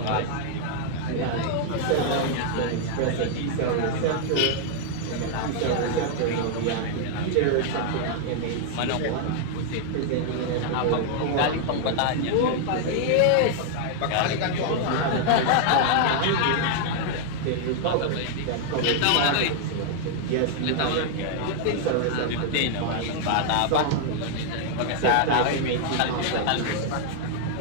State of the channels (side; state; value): both; different; correlation 0.00